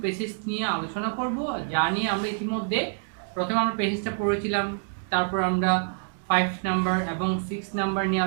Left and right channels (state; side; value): silent; left; digital silence